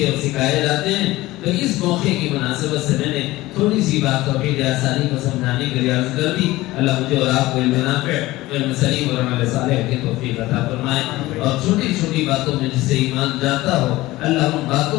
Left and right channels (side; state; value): right; quieter; 18.3 dB